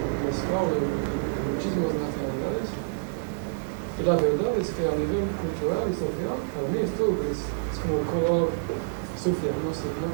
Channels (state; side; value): silent; left; 60 dB below the other